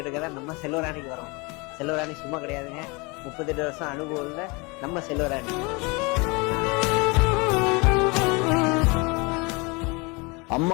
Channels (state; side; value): quieter; right; 28.0 dB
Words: எடுக்க தான் நம்ம செல்வராணிக்கு வரோம். செல்வராணி சும்மா கிடையாதுங்க, 38 வருஷம் அனுபவம் உள்ள நம்ம செல்வராணி.